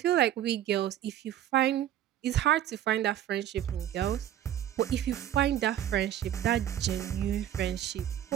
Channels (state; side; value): quieter; left; 11.5 dB